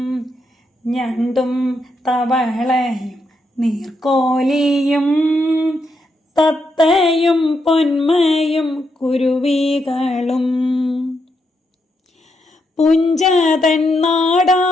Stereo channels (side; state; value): both; normal; correlation 0.81